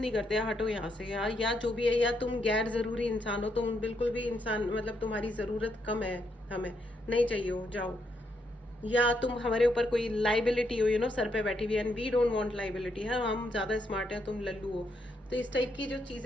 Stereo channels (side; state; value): both; normal; correlation 0.77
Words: करते, हटो यहाँ से यार, या जो भी है, या तुम गैर जरूरी इंसान हो, तुम बिल्कुल भी इंसान, मतलब तुम्हारी जरूरत कम है, हमें नहीं चाहिए हो, जाओ। या तुम हमारे ऊपर कोई लाइबिलिटी हो, सर पे बैठी हुई, and we don't want liability है, हम ज्यादा स्मार्ट हैं, तुम लल्लू हो। तो इस टाइप की जो